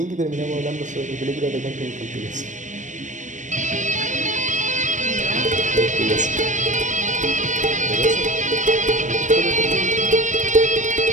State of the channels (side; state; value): left; late; 0.36 ms